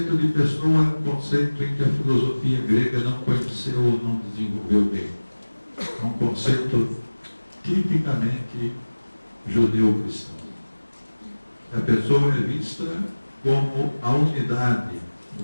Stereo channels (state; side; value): inverted; both; correlation -1.00